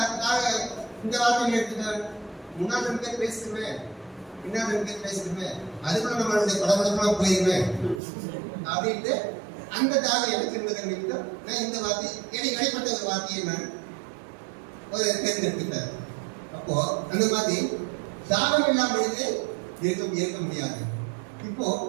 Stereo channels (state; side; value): drops out; left; at 8.0 s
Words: இந்த வார்த்தையை எடுத்துட்டேன்? முன்னாள் 2 பேர் பேசிடுவேன், பின்னால் 2 பேர் பேசிடுவேன், அதுக்குள்ள நம்மளுடைய படப்படப்பெல்லாம் போயிருவேன் அப்படின்ட்டு அந்த தாகம் எனக்கு இருந்தது. நான் இந்த வார்த்தை எனக்கு வெளிப்பட்ட ஒரு வார்த்தையை நான் ஒரு தேர்ந்தெடுத்துட்டேன். அப்போ அந்த மாதிரி தாகம் இல்லாமல் இருக்க முடியாது. இப்போ